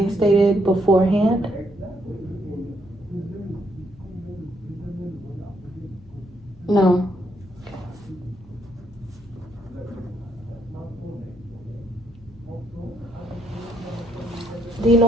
stated beforehand? No. Do you know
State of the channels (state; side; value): noise; left; hum, 23 dB below the sound